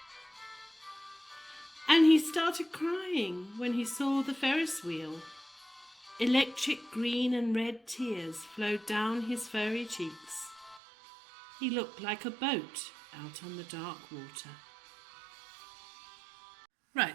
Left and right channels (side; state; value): left; drops out; at 10.8 s